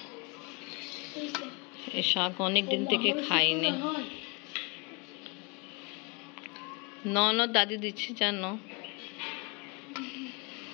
এই শাক অনেক দিন থেকে খাইনি। ননদ দাদি দিচ্ছি, জানো।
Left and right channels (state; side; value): quieter; right; 31.0 dB